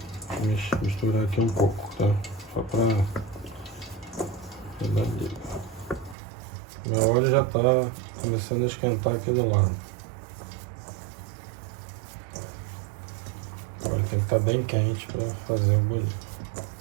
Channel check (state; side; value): drops out; left; at 6.2 s